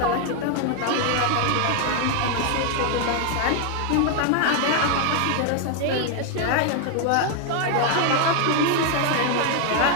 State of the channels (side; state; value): both; different; correlation 0.00